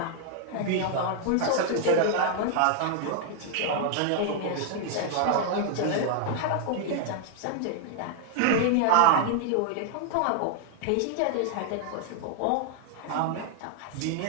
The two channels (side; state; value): both; different; correlation 0.00